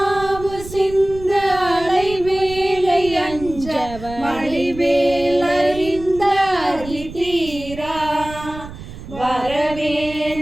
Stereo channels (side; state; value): right; noise; rumble, 14 dB below the sound